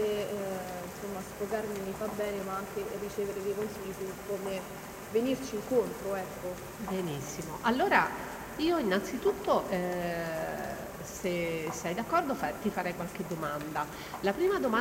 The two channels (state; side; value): identical; both; correlation 1.00